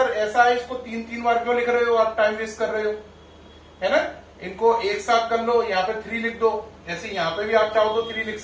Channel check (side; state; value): both; identical; correlation 1.00